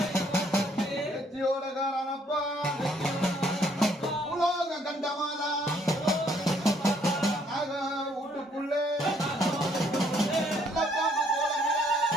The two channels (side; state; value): both; normal; correlation 0.66